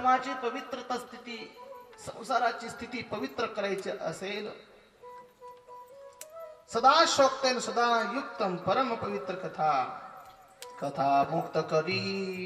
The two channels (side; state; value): both; identical; correlation 1.00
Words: पवित्रता स्थिती, संसाराची स्थिती पवित्र करायची असेल, सदा शोक्तेन सदा युक्तम परम पवित्र कथा. कथा मुक्त करी,